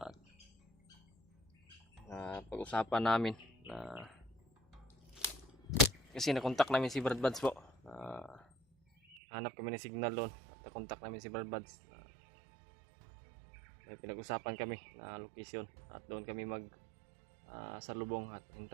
Pag-usapan namin na kasi nakontak namin si Brad Buds po. Hanap kami ng signal doon at nakontak namin si Brad Buds. May pinag-usapan kami na location at doon kami salubong at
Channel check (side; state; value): left; drops out; at 9.2 s